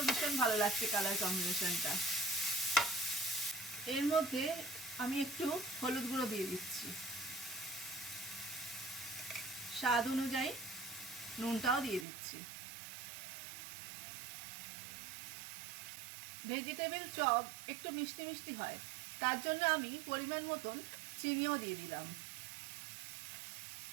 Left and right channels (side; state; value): left; drops out; at 12.1 s